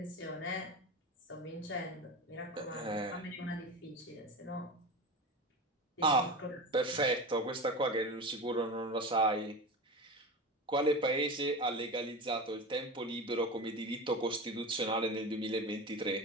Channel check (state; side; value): normal; both; correlation 0.27